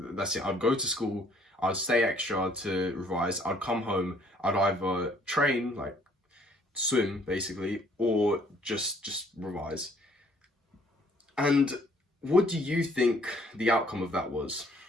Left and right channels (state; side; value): normal; both; correlation 0.62